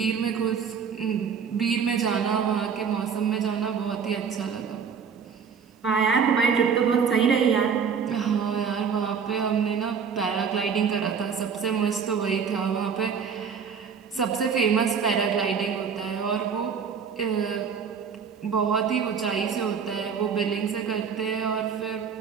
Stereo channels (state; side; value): quieter; left; 6.6 dB